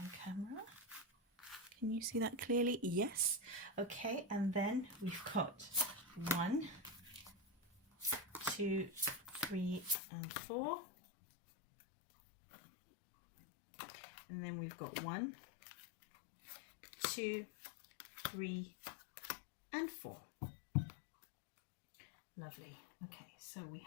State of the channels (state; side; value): drops out; right; at 10.0 s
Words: camera. Can you see that clearly? Yes. Okay, and then we've got 1, 2, 3, and 4. And then we've got 1, 2, 3, and 4. Lovely. Okay, so we